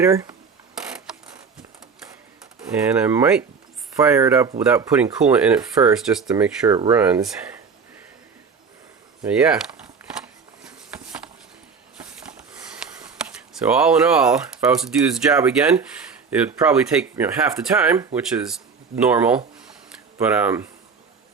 and I might fire it up without putting coolant in it first just to make sure it runs. But yeah. So all in all, if I was to do this job again, it would probably take half the time, which is normal. But I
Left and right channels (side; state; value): left; quieter; 5.5 dB